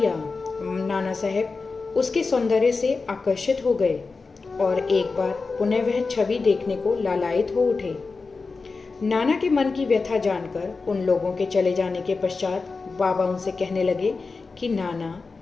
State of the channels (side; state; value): right; quieter; 4.2 dB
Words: नाना साहब उसके सौंदर्य से आकर्षित हो गए और एक बार पुनः वह छवि देखने को लालायित हो उठे। नाना के मन की व्यथा जानकर उन लोगों के चले जाने के पश्चात बाबा उनसे कहने लगे कि नाना,